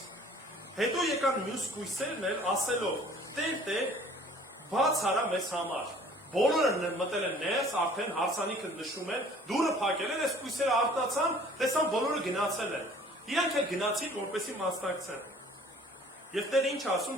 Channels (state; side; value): normal; both; correlation 0.52